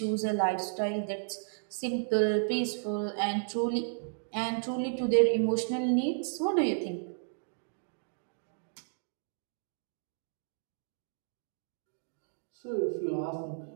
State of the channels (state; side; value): silent; left; digital silence